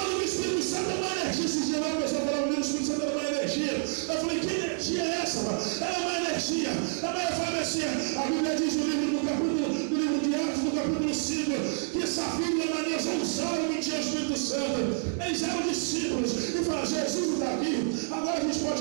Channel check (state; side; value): silent; left; 59 dB below the other